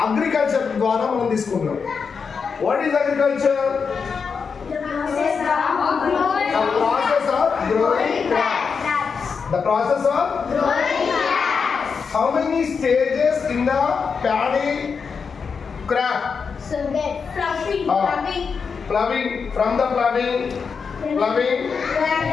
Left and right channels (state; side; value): quieter; right; 5.7 dB